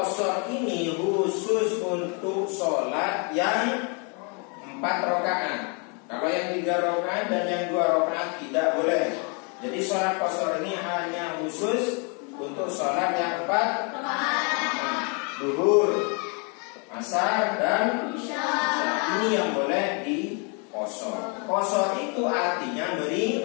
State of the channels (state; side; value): quieter; right; 35.7 dB